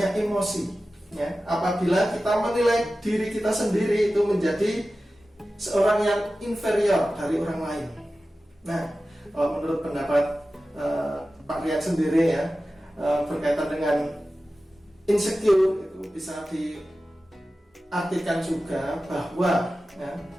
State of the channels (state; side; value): normal; both; correlation 0.95